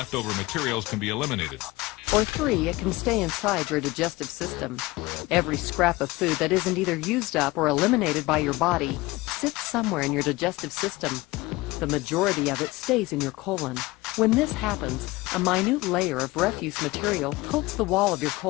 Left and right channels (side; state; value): right; quieter; 20.8 dB